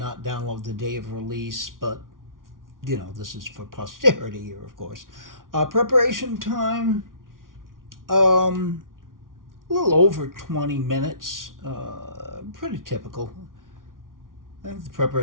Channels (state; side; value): late; left; 0.90 ms